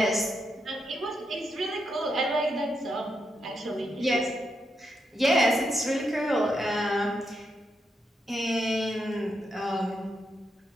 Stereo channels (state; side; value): normal; both; correlation 0.82